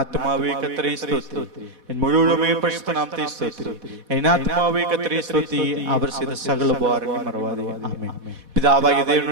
கர்த்தரை ஸ்தோத்திரி, என் முழுவதுமே பரிசுத்த நாமத்தை ஸ்தோத்திரி. என் ஆத்துமாவே கர்த்தரை ஸ்தோத்திரி, அவர் செய்த சகல உபகாரங்களையும் மறவாதே. ஆமென். பிதாவாகிய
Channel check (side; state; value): left; late; 4.1 ms